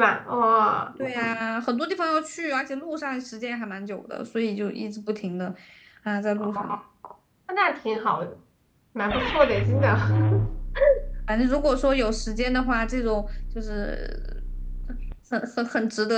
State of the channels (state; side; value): identical; both; correlation 1.00